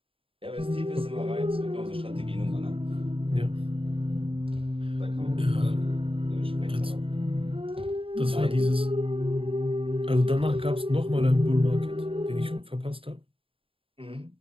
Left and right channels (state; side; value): late; left; 0.26 ms